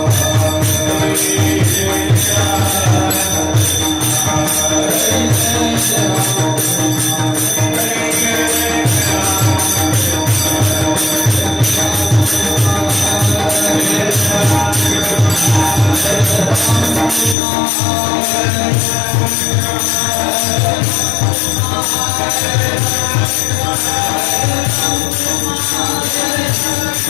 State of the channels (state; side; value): drops out; right; at 17.4 s